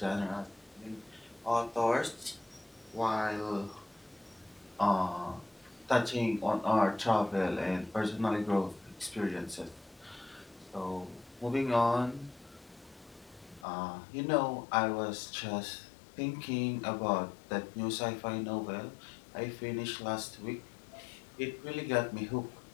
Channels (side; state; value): right; drops out; at 13.7 s